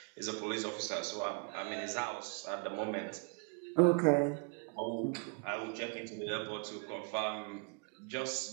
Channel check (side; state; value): left; quieter; 34.4 dB